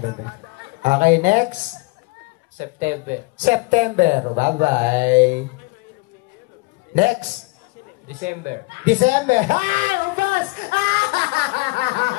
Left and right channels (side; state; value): right; quieter; 26.4 dB